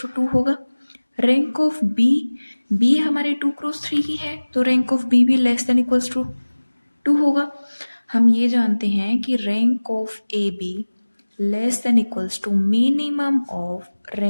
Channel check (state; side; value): inverted; both; correlation -1.00